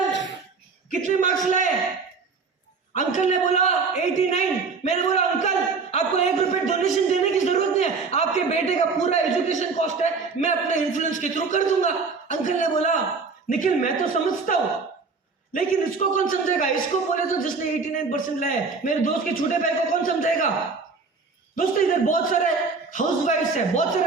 कितने मार्क्स लाए? अंकल ने बोला 89। मैंने बोला अंकल आपको 1 रुपए डोनेशन देने की जरूरत नहीं है, आपके बेटे का पूरा एजुकेशन कॉस्ट है, मैं अपने इन्फ्लुएंस के थ्रू कर दूंगा। अंकल ने बोला निखिल मैं तो समझता हूं, लेकिन इसको कौन समझेगा? इसको बोले तो जिसने 89% लाए, मेरे दोस्त के छोटे भाई को कौन समझेगा? दोस्तों इधर बहुत सारे हाउसवाइफ्स है, बहुत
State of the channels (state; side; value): quieter; left; 4.6 dB